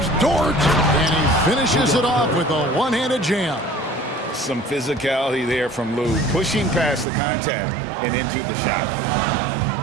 Dort, and he finishes it off with a one-handed jam. Some physicality there from Lou, pushing past the contact and into the shot.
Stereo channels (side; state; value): left; drops out; at 7.1 s